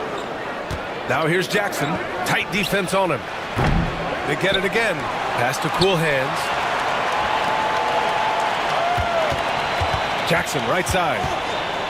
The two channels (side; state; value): both; identical; correlation 1.00